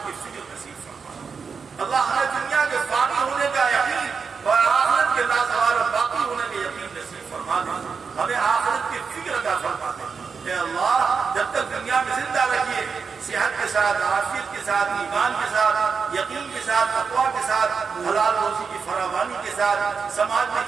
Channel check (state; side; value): quieter; left; 5.6 dB